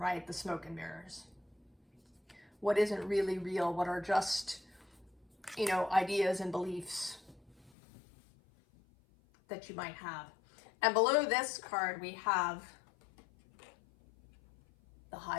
the smoke and mirrors. What isn't really real, what are just, you know, ideas and beliefs that you might have. And below this card, we have the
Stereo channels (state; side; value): drops out; right; at 7.7 s